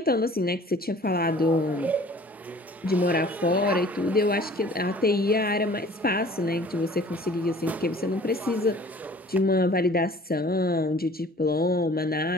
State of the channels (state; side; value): normal; both; correlation 0.49